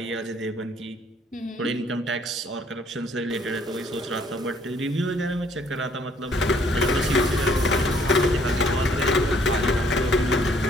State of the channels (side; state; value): both; normal; correlation 0.63